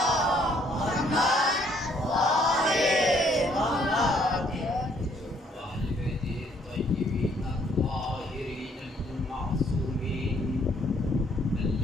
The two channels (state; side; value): normal; both; correlation 0.65